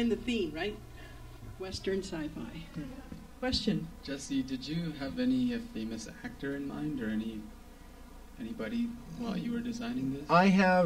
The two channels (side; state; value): both; identical; correlation 1.00